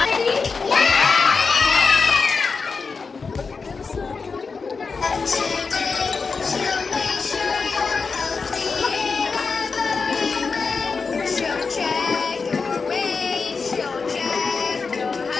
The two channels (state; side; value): quieter; right; 4.8 dB